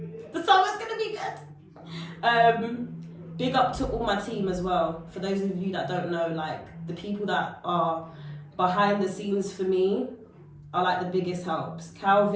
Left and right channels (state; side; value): identical; both; correlation 1.00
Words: The summer's gonna be good. Big up to all my team as well. For those of you that don't know, like the people that are behind the scenes for me are like the biggest helps.